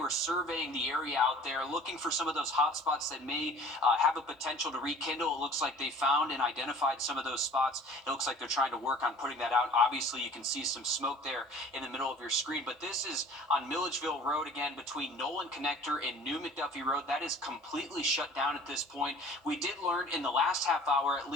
surveying the area out there, looking for some of those hot spots that may have a potential to rekindle. It looks like they found and identified some of those spots. It looks like they're trying to work on putting that out. Obviously, you can see some smoke there in the middle of your screen, but this is on Milledgeville Road again between Nolan Connector and New McDuffie Road. That is completely shut down at this point. We did learn in the last half hour at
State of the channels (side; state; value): both; normal; correlation 0.48